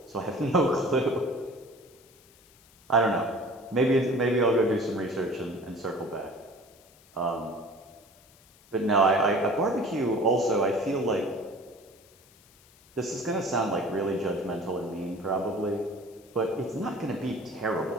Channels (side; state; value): left; noise; hiss, 27 dB below the sound